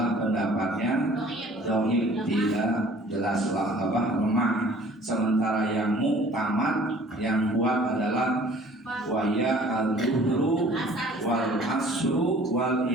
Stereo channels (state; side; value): normal; both; correlation 0.51